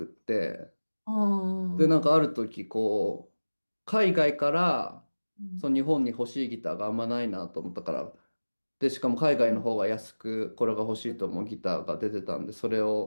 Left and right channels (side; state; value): both; inverted; correlation -1.00